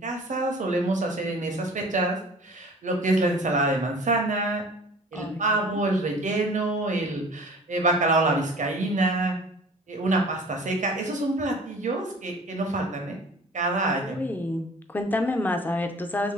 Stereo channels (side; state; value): both; normal; correlation 0.46